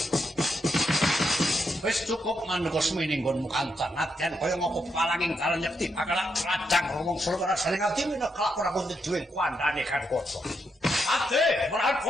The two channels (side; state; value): both; normal; correlation 0.81